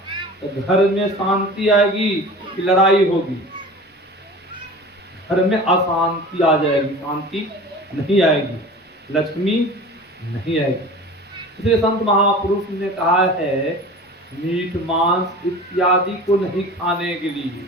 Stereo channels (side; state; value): both; normal; correlation 0.38